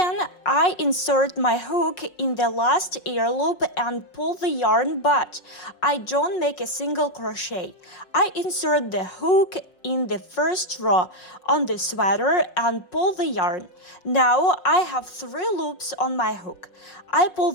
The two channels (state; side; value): late; right; 5.5 ms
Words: I insert my hook in the last air loop and pull the yarn, but I don't make a single crochet. I insert the hook in the first row on the sweater and pull the yarn. Now I have 3 loops on my hook. I pull